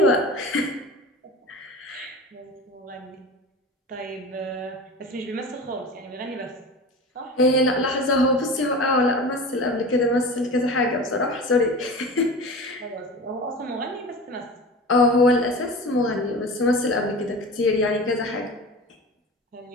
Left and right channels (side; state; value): both; normal; correlation 0.33